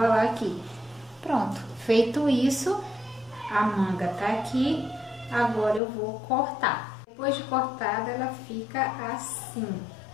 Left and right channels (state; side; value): drops out; right; at 5.8 s